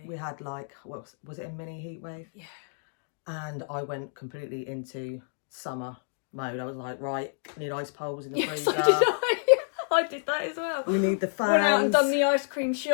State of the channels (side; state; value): right; silent; digital silence